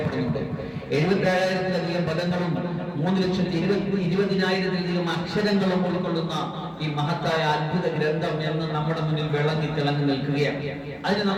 77,000-ലധികം പദങ്ങളും 3,20,000-ലധികം അക്ഷരങ്ങളും ഉൾക്കൊള്ളുന്ന ഈ മഹത്തായ അത്ഭുത ഗ്രന്ഥം എന്ന് നമ്മുടെ മുന്നിൽ വിളങ്ങി തിളങ്ങി നിൽക്കുകയാണ്. അതിനെ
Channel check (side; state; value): both; identical; correlation 1.00